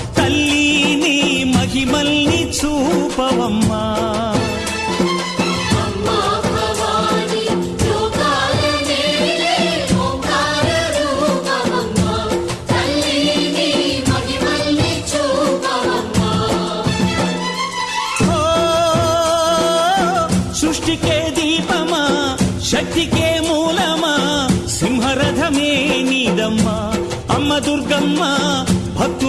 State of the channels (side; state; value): both; identical; correlation 1.00